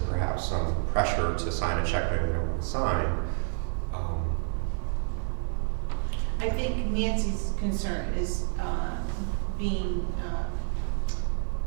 perhaps some pressure to sign a check maybe they don't want to sign. I think Nancy's concern is being,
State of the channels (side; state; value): left; silent; digital silence